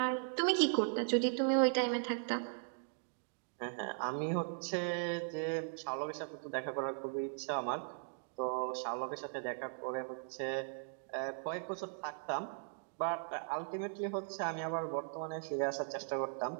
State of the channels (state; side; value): silent; left; digital silence